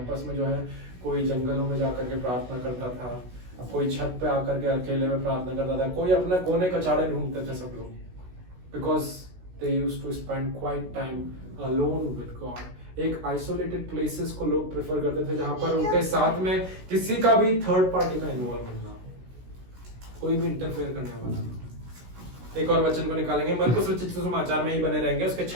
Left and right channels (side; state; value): left; late; 16 ms